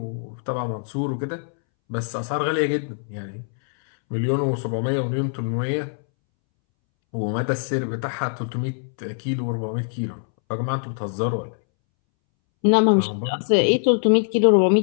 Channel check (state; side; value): silent; right; 63 dB below the other